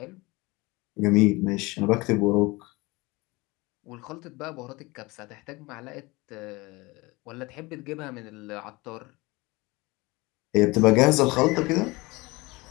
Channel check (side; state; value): right; quieter; 23.2 dB